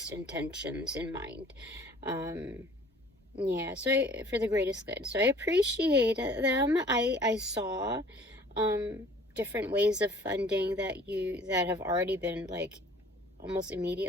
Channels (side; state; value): both; normal; correlation 0.52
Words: intentions in mind. Yeah, so for the greatest good. So I appreciate them. I saw different ways of funding that have already been like almost